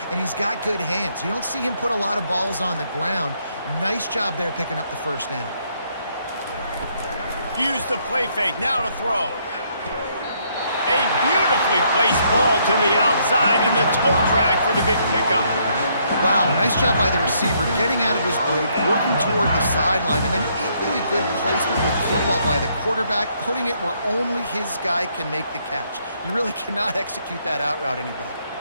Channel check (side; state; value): both; inverted; correlation -0.71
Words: and he's got good hands. You don't see him put a lot of balls on the ground. Nice job there picking up the first down. Use the play fake, now to throw. A beautifully placed ball to the outside and the toe drag for the big pickup. Wow, nice job by the receiver getting out of his break, working toward the sideline, and then equally good placement with the football by the quarterback, putting it where only his guy can make the catch. You really cannot execute that out route any better.